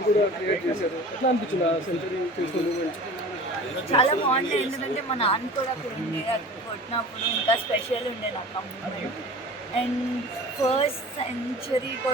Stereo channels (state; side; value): normal; both; correlation 0.40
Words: కూడా క్రియేట్ చేశారు. ఎట్లా అనిపించింది ఆ సెంచరీ చేసిన మూమెంట్? చాలా బాగుండే, ఎందుకంటే మా నాన్న కూడా అక్కడ ఉండే, అక్కడ కొట్టినప్పుడు ఇంకా స్పెషల్ ఉండే నాకు ఆ మూమెంట్. అండ్ ఫస్ట్ సెంచరీ